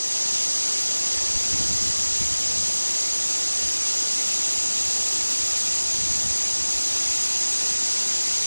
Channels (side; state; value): both; inverted; correlation -1.00